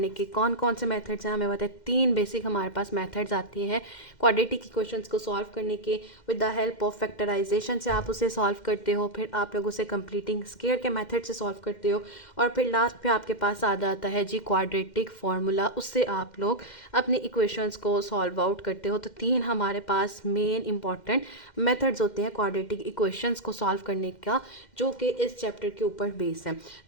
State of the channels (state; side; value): late; right; 2.1 ms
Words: के कौन कौन से मेथड्स हैं हमें बताए। 3 बेसिक हमारे पास मेथड्स आती हैं क्वाड्रेटिक इक्वेशंस को सॉल्व करने के। With the help of factorization से आप उसे सॉल्व करते हो, फिर आप लोग उसे कंप्लीटिंग स्क्वायर के मेथड से सॉल्व करते हो, और फिर लास्ट पे आपके पास आ जाता है जी क्वाड्रेटिक फार्मूला, उससे आप लोग अपनी इक्वेशंस को सॉल्व आउट करते हो। तो 3 हमारे पास मेन इंपॉर्टेंट मेथड्स होते हैं क्वाड्रेटिक इक्वेशंस को सॉल्व करने का, जो कि इस चैप्टर के ऊपर बेस है।